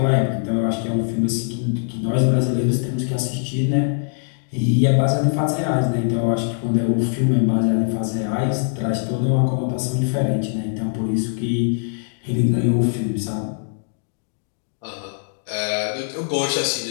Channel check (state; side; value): silent; right; digital silence